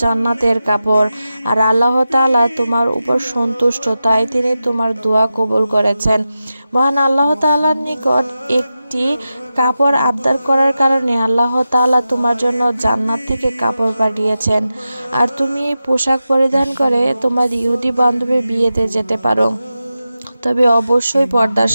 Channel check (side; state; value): both; inverted; correlation -0.92